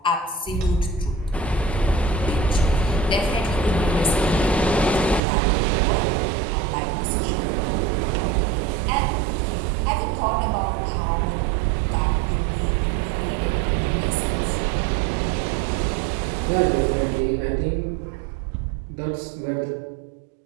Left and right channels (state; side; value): drops out; left; at 5.2 s